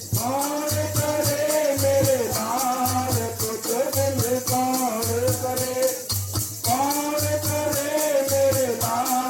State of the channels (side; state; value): both; identical; correlation 1.00